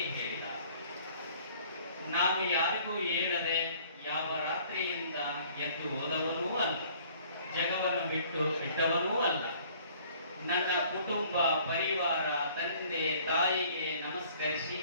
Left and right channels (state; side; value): inverted; both; correlation -0.55